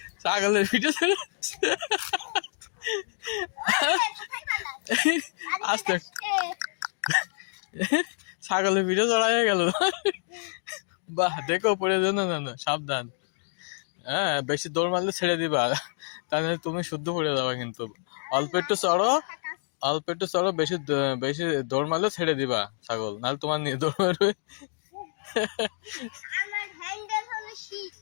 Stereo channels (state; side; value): silent; right; digital silence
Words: ছাগলের পিঠে আস্তে ছাগলের পিঠে চড়াইয়া গেল। বাহ, দেখো পড়ে যেন না, না সাবধান। হ্যাঁ, বেশি দৌড় মারলে ছেড়ে দিবা, তাহলে তুমি শুদ্ধ পড়ে যাবা। কিন্তু অল্প একটু চড়ো, অল্প একটু চড়ো, বেশি বেশি দৌড় মারলে ছেড়ে দিবা ছাগল, নাহলে তোমার নিয়ে দৌড় মারবে।